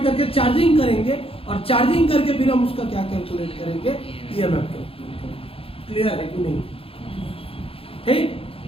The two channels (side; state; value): right; late; 0.27 ms